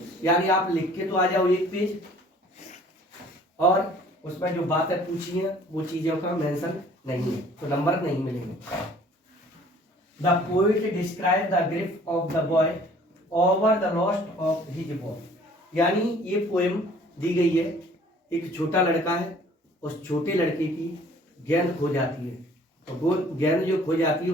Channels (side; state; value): both; normal; correlation 0.54